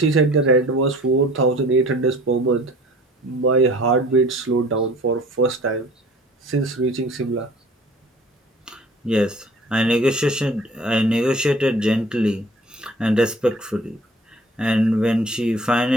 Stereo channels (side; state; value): both; normal; correlation 0.48